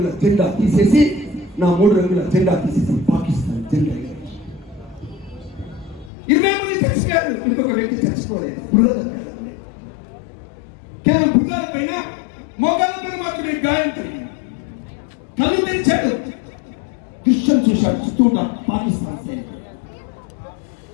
జెండా తీసేసి పాకిస్తాన్ జెండా 20 మంది చచ్చిపోయారు. ఇంకొక వ్యక్తి చచ్చిపోలేదు. కేవలం భుజాల పైన, మోకాళ్ళ పైన మాత్రమే గాయం కలిగింది. కళ్ళు తెరిచాడు, దృశ్యం చూశాడు. చుట్టూ ఉన్న పాకిస్తాన్ సైనికులు,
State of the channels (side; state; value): right; drops out; at 6.1 s